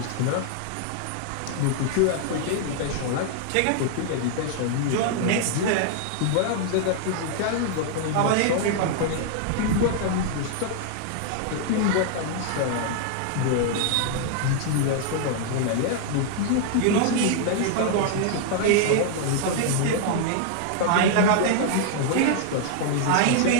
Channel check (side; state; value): both; different; correlation 0.00